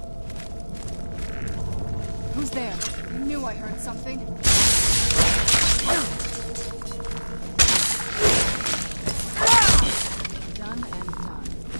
Who's there? I knew I heard something. Done and done.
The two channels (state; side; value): inverted; both; correlation -1.00